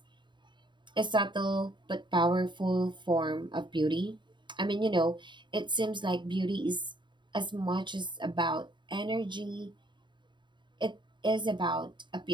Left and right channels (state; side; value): late; left; 0.23 ms